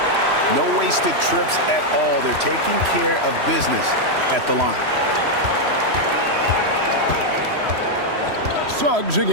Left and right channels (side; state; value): left; late; 3.1 ms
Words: No wasted trips at all. They're taking care of business at the line. Suggs